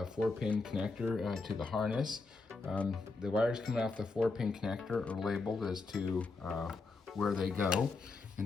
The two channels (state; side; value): quieter; right; 3.8 dB